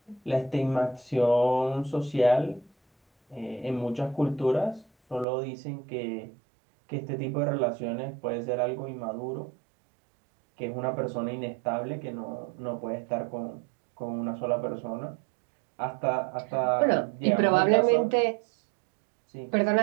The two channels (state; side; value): drops out; left; at 5.2 s